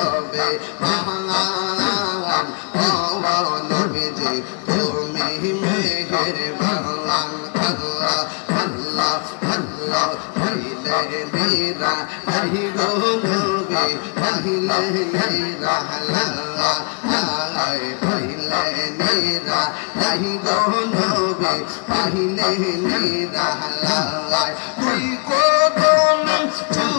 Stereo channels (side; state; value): right; quieter; 36.5 dB